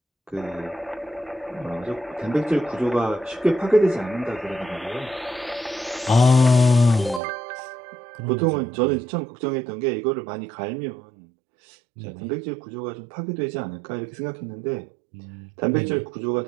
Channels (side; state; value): left; drops out; at 7.2 s